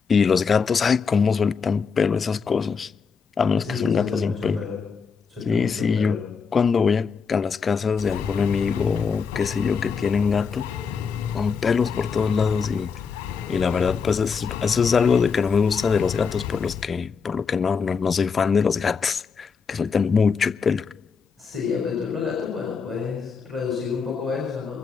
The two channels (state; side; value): quieter; right; 5.7 dB